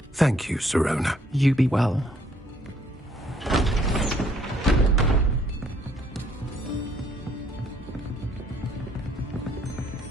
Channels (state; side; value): normal; both; correlation 0.65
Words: Thank you, Sirona. You be well.